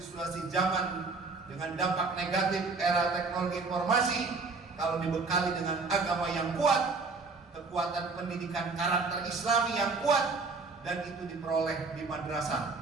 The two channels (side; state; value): left; quieter; 4.1 dB